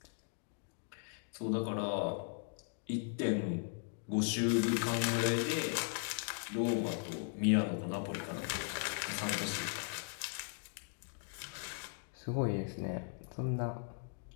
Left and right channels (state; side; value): silent; right; 52 dB below the other